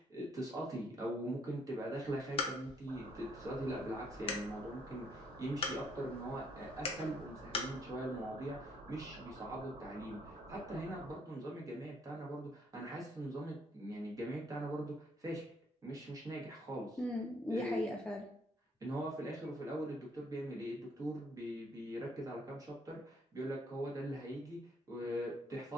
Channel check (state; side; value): normal; both; correlation 0.67